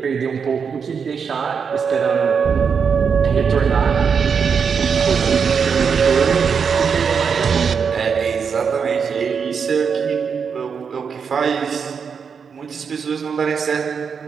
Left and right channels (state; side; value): quieter; left; 6.3 dB